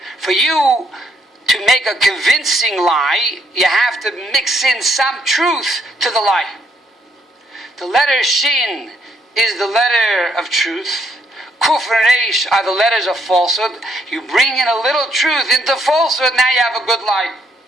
For you to make a convincing lie, you have to mix in some truth to the lie. The letter Shin is the letter of truth. Kuf and Resh are the letters of falsehood. You bring in a little truth into falsehood, now you have a good lie.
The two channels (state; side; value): normal; both; correlation 0.72